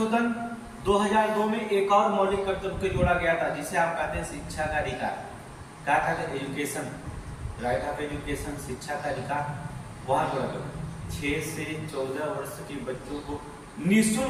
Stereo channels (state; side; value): identical; both; correlation 1.00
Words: 2002 में एक और मौलिक कर्तव्य को जोड़ा गया था, जिसे आप कहते हैं शिक्षा का अधिकार। क्या कहते हैं? एजुकेशन, राइट ऑफ एजुकेशन, शिक्षा का अधिकार। वहां जोड़ा गया 6 से 14 वर्ष के बच्चों को